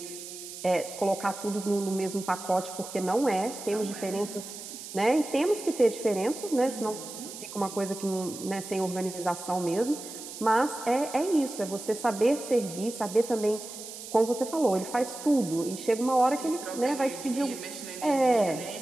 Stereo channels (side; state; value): right; noise; hiss, 12 dB below the sound